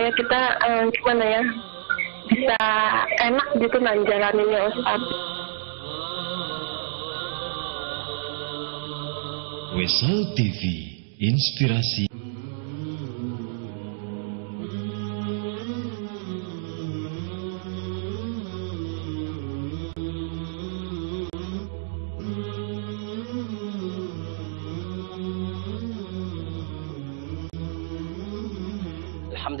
kita gimana ya, bisa enak gitu nah jalaninnya Ustaz. Wesal TV, inspirasi.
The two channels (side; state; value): left; silent; digital silence